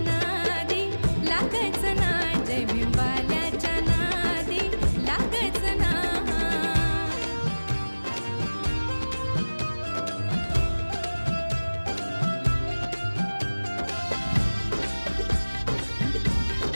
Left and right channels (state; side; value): inverted; both; correlation -1.00